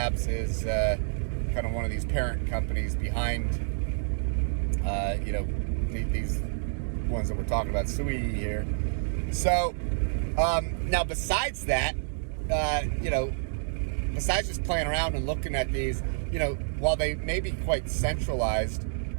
is kind of one of these parent companies behind, these ones that we're talking about, SUI here. So, now besides that, besides just playing around and looking at these, while they may be quite centralized,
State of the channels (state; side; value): silent; left; digital silence